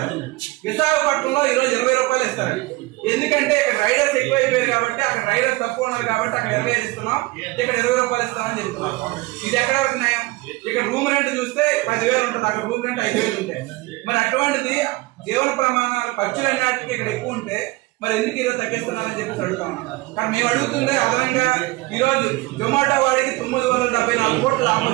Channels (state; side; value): quieter; left; 21.6 dB